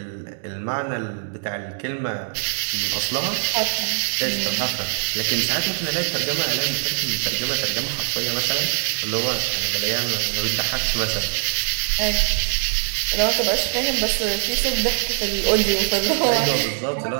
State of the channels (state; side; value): silent; left; digital silence